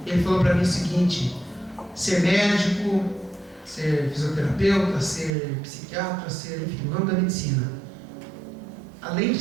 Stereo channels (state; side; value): drops out; left; at 5.3 s